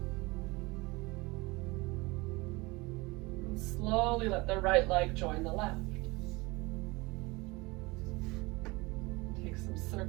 And slowly let the right leg join the left. Take some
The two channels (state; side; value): quieter; left; 23.8 dB